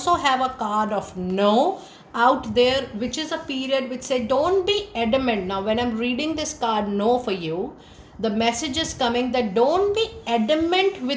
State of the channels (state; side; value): identical; both; correlation 1.00